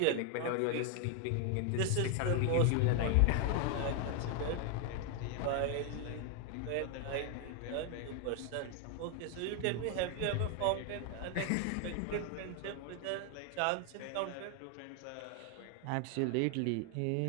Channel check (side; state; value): both; different; correlation 0.00